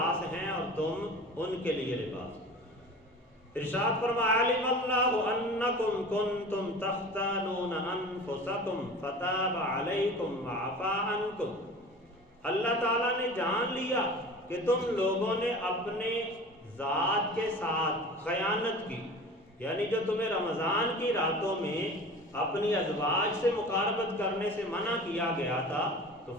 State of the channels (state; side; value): normal; both; correlation 0.38